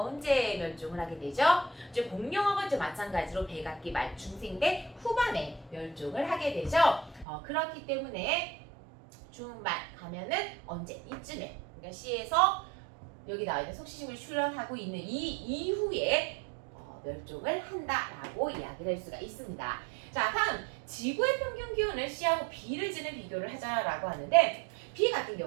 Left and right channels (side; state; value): left; drops out; at 7.2 s